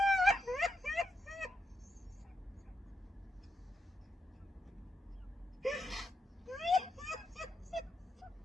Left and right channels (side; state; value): both; normal; correlation 0.84